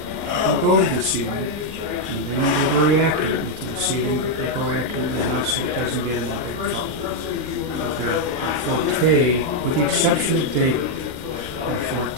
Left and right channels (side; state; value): left; late; 39 ms